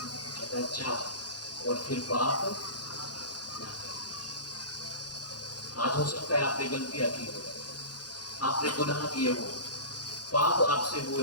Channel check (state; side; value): late; right; 0.69 ms